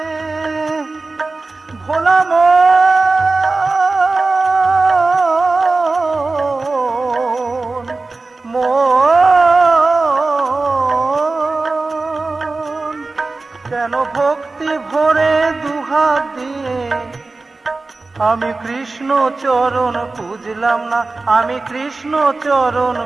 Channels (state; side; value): quieter; left; 3.5 dB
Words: ভোলা মন, কেন ভক্তি ভরে দুহাত দিয়ে আমি কৃষ্ণ চরণ পুজলাম না, আমি কৃষ্ণ চরণ